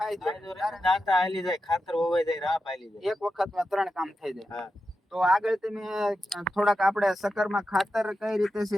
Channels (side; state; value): both; normal; correlation 0.90